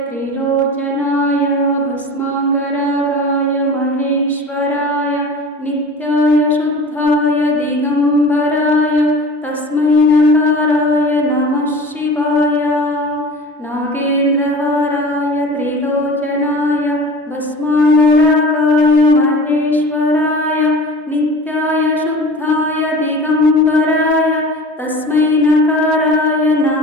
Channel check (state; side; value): normal; both; correlation 0.38